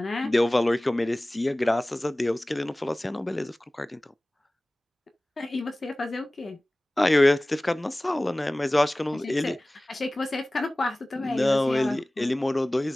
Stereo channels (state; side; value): normal; both; correlation 0.98